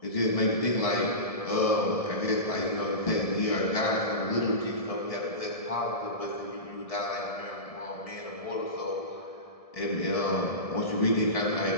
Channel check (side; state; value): right; late; 1.7 ms